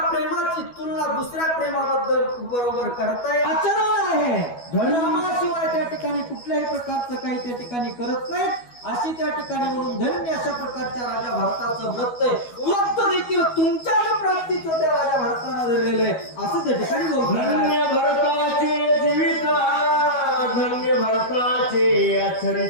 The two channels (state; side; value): late; right; 12 ms